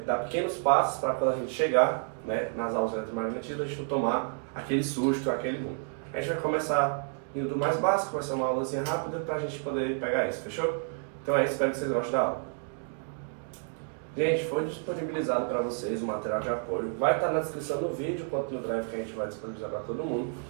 dar pequenos passos para quando a gente chegar, nas aulas de eletromagnetismo, a gente não tomar aquele susto, aquele boom. A gente vai começar indo do mais básico, vai ser uma aulazinha rápida para a gente poder pegar isso, fechou? Então é isso, espero que vocês gostem da aula. Gente, foi disponibilizado para vocês o material de apoio, vai estar na descrição do vídeo, quanto no drive que a gente vai disponibilizar para todo mundo.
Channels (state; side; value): silent; left; 56 dB below the other